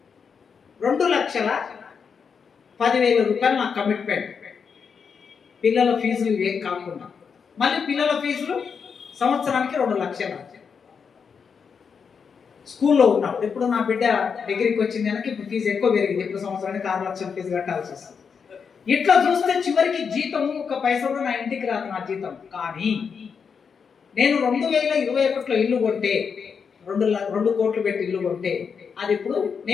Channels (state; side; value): quieter; right; 6.2 dB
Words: 2,10,000 నాకు కమిట్మెంట్. పిల్లల ఫీజులు ఏం కాకుండా మళ్ళీ పిల్లల ఫీజులు సంవత్సరానికి 2 లక్షలు. స్కూల్లో ఉన్నప్పుడు ఇప్పుడు నా బిడ్డ డిగ్రీకి వచ్చింది కనుక ఇప్పుడు ఫీజు ఎక్కువ పెరిగింది, ఇప్పుడు సంవత్సరానికి 6 లక్షల ఫీజు కట్టాల్సి వస్తుంది. ఇట్లా చూస్తే చివరికి జీతం ఒక పైసా కూడా నా ఇంటికి రాదు నా జీతం. కానీ నేను 2021లో ఇల్లు కొంటే 2 కోట్లు పెట్టి ఇల్లు కొంటే అది ఇప్పుడు